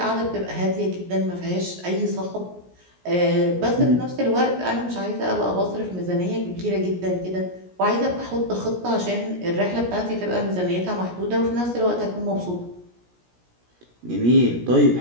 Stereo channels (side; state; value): left; late; 17 ms